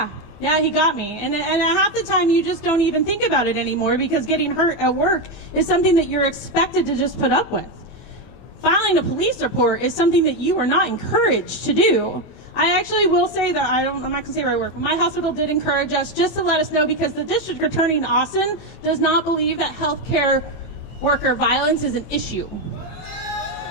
he got me. And half the time, you just don't even think about it anymore because getting hurt at work is something that you're expected to just put up with. Filing a police report is something that you are not encouraged to do. I actually will say that, I'm not going to say where I work, but my hospital did encourage us just to let us know because the district attorney in Austin does not believe that healthcare worker violence is an issue.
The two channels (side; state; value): right; late; 24 ms